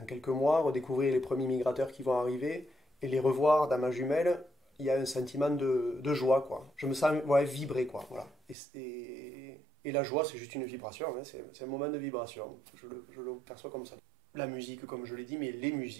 quelques mois, redécouvrir les premiers migrateurs qui vont arriver et les revoir dans ma jumelle, il y a un sentiment de joie, quoi. Je me sens ouais, vibrer, quoi. Voilà. Et la joie, c'est juste une vibration, hein, c'est un moment de vibration. Je le perçois comme ça. La musique, comme je l'ai dit, mais les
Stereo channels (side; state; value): left; drops out; at 8.6 s